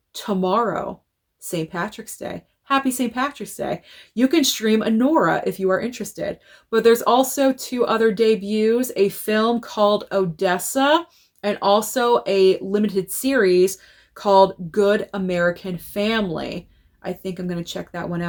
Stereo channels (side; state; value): both; identical; correlation 1.00